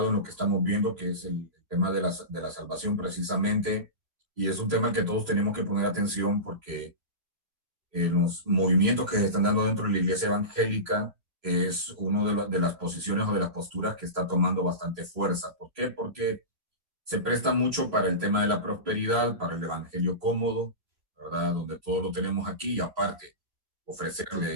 en lo que estamos viendo, que es el tema de la salvación precisamente. Y es un tema al que todos tenemos que poner atención porque los movimientos que se están dando dentro de la iglesia evangélica es una de las posiciones o de las posturas que está tomando bastante fuerza. ¿Por qué? Porque se presta mucho para el tema de la prosperidad, para el evangelio cómodo, ¿verdad? Donde todo lo tenemos aquí y aparte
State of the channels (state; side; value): late; left; 3.1 ms